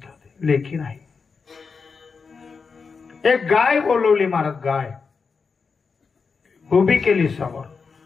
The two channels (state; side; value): quieter; right; 5.2 dB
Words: लेखी नाही. एक गाय बोलवली महाराज. गाय उभी केली समोर,